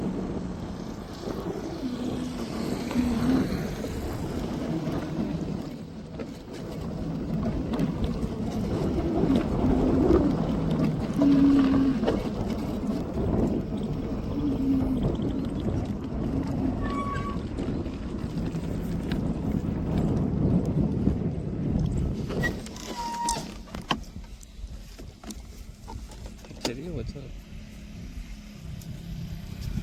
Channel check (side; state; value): both; identical; correlation 1.00